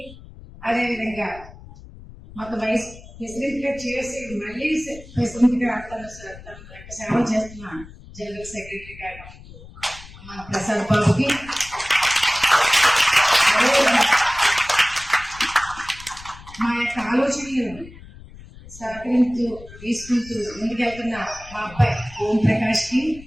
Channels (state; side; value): noise; left; rumble, 18 dB below the sound